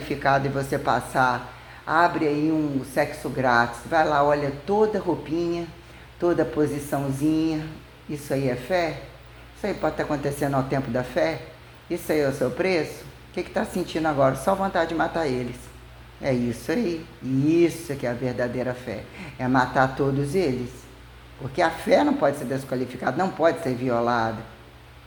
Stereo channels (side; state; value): both; identical; correlation 1.00